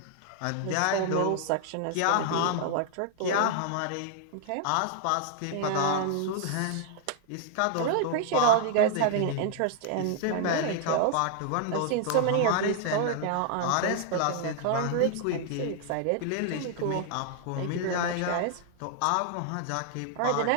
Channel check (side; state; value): both; different; correlation 0.00